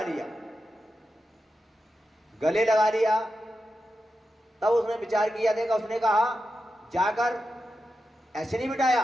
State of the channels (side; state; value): both; normal; correlation 0.90